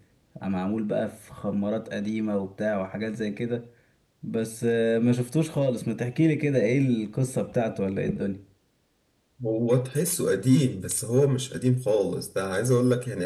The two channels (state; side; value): identical; both; correlation 1.00